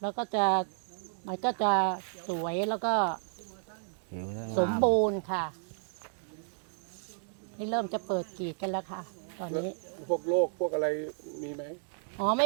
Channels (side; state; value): left; silent; digital silence